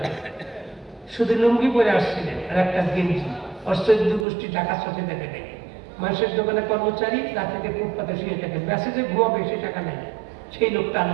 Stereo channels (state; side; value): drops out; left; at 4.2 s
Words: শুধু লুঙ্গি পরে আসছিলেন আর একটা গেঞ্জি। অষ্ট্র গোষ্ঠী টাকা চোখে দেখে নেই, মানুষের দোকানে কর্মচারী, রাতে ফুটপাতে শুয়ে থাকে, মেসেজে ঘুমাবে, সে টাকা নেই। সেই লোকটা